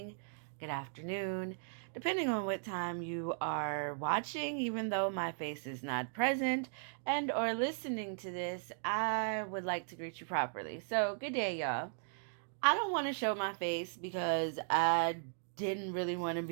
good afternoon, depending on what time you are watching, even though my face is not present and or listening to this, I would like to greet you properly. So, good day, y'all. I don't want to show my face because I didn't really want to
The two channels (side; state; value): left; silent; digital silence